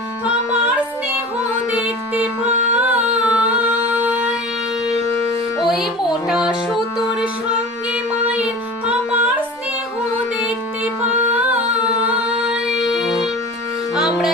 আমার স্নেহ দেখতে পাই, ওই মোটা সুতোর সঙ্গে মায়ের আমার স্নেহ দেখতে পাই। আমরা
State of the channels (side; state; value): both; normal; correlation 0.36